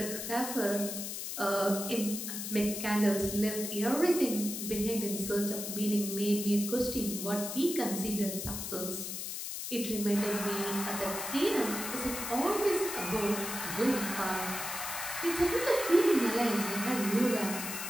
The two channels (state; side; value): noise; left; hiss, 5 dB below the sound